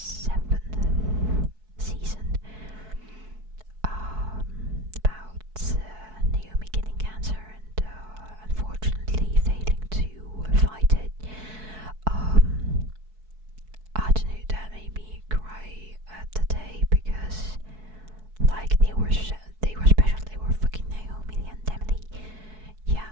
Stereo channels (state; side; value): late; left; 4.6 ms